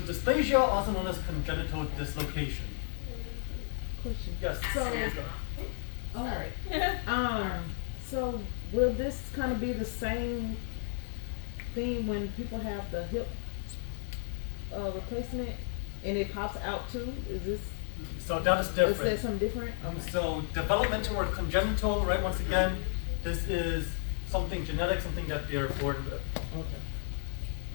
dysplasia, also known as congenital dislocation. Question. Yes. So will this kind of be the same thing when people have the hip replacement and it pops out too? Is this, So that is is that different. something different? So developmental or congenital, right? Once again, this is something genetic, something that they're born with. Okay.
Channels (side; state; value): right; silent; 56 dB below the other